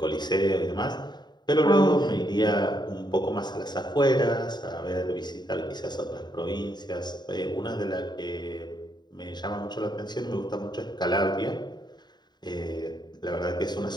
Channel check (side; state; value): right; late; 0.21 ms